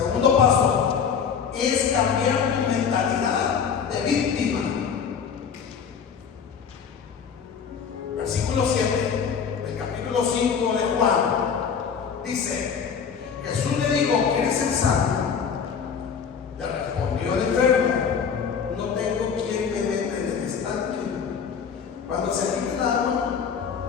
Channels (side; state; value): right; quieter; 6.8 dB